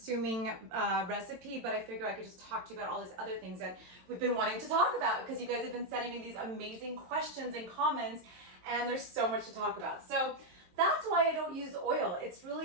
recipe, but I figure I could just talk to you about all these other things that we've been wanting to talk about because you guys have been sending me these amazing questions and comments, and there's so much to talk about. So that's why I don't use oil. It's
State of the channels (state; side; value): late; left; 22 ms